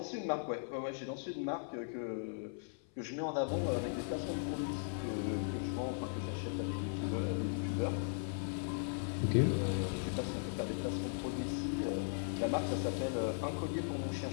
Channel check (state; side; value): silent; right; 52 dB below the other